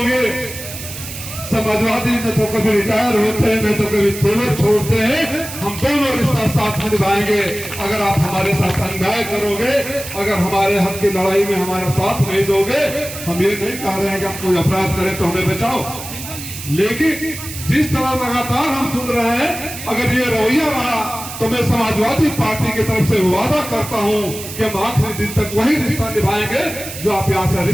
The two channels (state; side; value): noise; right; hiss, 10 dB below the sound